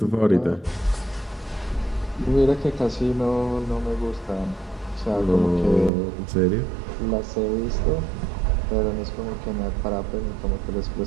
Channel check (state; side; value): drops out; left; at 5.9 s